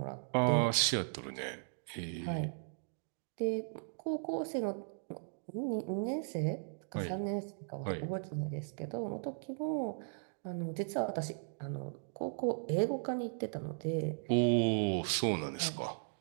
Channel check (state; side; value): silent; left; digital silence